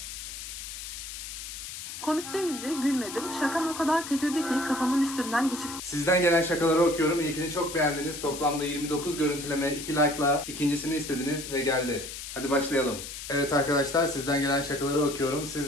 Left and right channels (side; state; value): left; noise; hiss, 9 dB below the sound